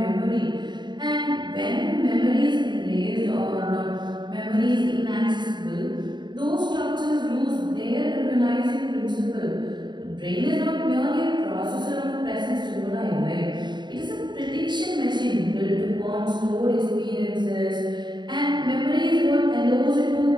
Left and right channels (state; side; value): late; left; 0.22 ms